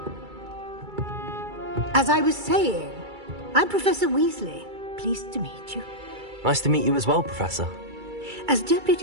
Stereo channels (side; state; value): left; late; 2.3 ms